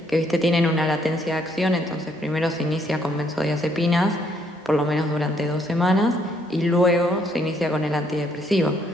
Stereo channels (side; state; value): both; normal; correlation 0.70